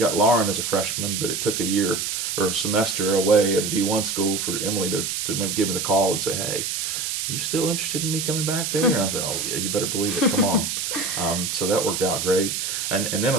Lauren as a freshman, but it took a year or a semester away at a D1 school for Emily to give me the call and say, hey, you still interested in me coming back there? And I said, oh yeah, you better believe it, come on. So that worked out great. And then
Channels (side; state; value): right; noise; hiss, 2 dB below the sound